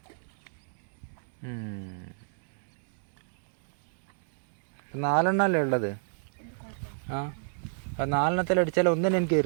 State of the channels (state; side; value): silent; left; digital silence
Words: നാലെണ്ണല്ലേ ഉള്ളത്? ആ 4 അടിച്ചാൽ ഒന്നിനും എനിക്ക്